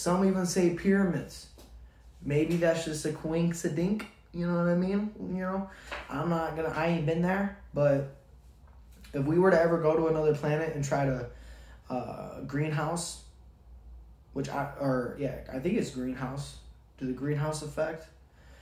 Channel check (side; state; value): both; identical; correlation 1.00